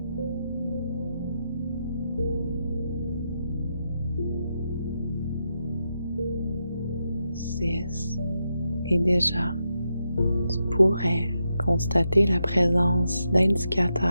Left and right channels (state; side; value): inverted; both; correlation -0.85